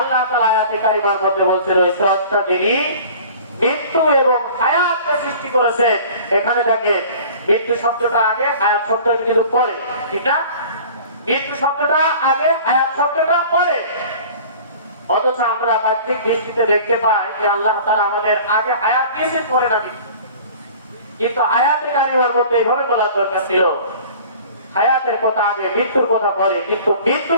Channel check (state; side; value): inverted; both; correlation -0.44